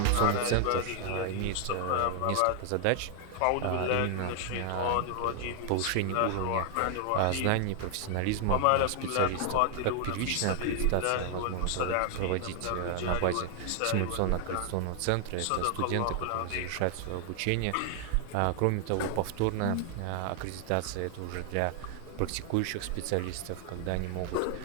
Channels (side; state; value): both; different; correlation 0.00